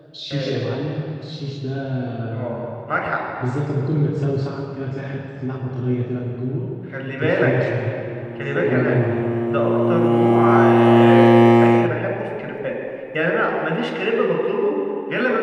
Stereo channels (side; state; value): both; identical; correlation 1.00